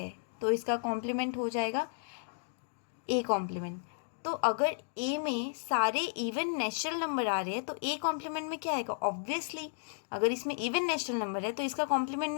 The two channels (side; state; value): right; silent; digital silence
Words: तो इसका कॉम्प्लीमेंट हो जाएगा ए कॉम्प्लीमेंट। तो अगर ए में सारे इवन नेचुरल नंबर आ रहे हैं, तो ए कॉम्प्लीमेंट में क्या आएगा? ऑब्वियसली अगर इसमें इवन नेचुरल नंबर है तो इसका कॉम्प्लीमेंट